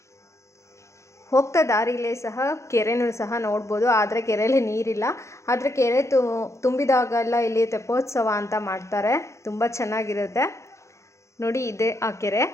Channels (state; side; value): late; right; 0.14 ms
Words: ಹೋಗ್ತಾ ದಾರಿಲೇ ಸಹ ಕೆರೆನೂ ಸಹ ನೋಡ್ಬೋದು. ಆದರೆ ಕೆರೆಯಲ್ಲಿ ನೀರಿಲ್ಲ. ಆದರೆ ಕೆರೆ ತುಂಬಿದಾಗೆಲ್ಲ ಇಲ್ಲಿ ತೆಪ್ಪೋತ್ಸವ ಅಂತ ಮಾಡ್ತಾರೆ. ತುಂಬ ಚೆನ್ನಾಗಿರುತ್ತೆ ನೋಡಿ. ಇದೆ ಆ ಕೆರೆ,